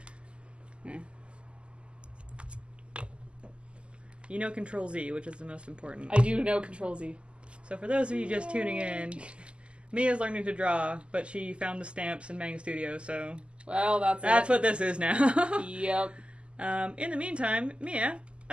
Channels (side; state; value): left; late; 0.053 ms